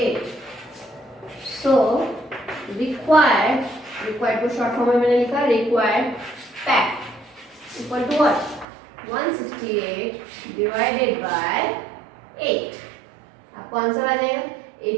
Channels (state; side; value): drops out; left; at 8.7 s